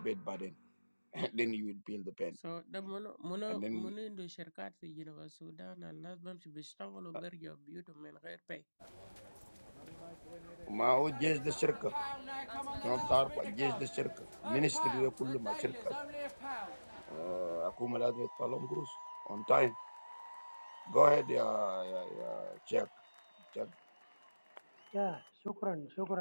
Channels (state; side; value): inverted; both; correlation -1.00